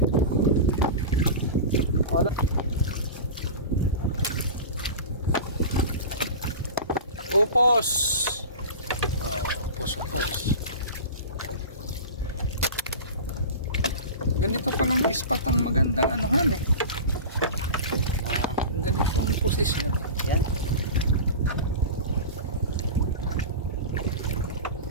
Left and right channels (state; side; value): inverted; both; correlation -0.30